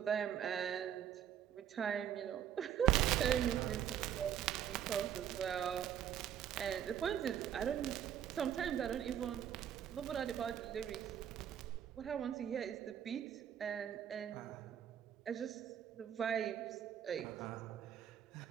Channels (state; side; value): quieter; left; 9.8 dB